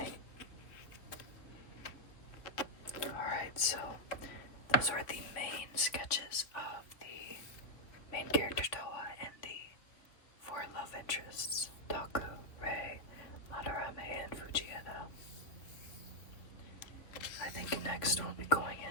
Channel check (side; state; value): right; late; 3.0 ms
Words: Alright, so those are the main sketches of the main character Toa and the four love interests, Taku, Rei, Madarame, and Fujieda. I think next we'll be going